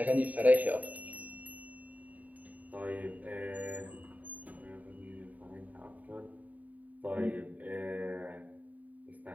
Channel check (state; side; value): late; left; 0.075 ms